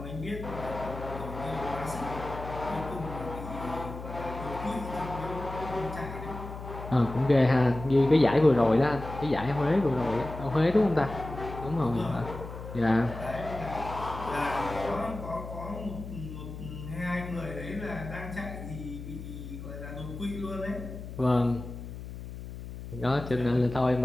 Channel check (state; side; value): noise; left; hum, 10 dB below the sound